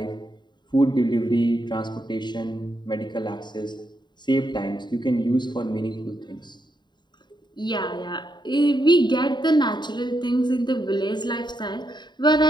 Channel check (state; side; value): late; right; 0.21 ms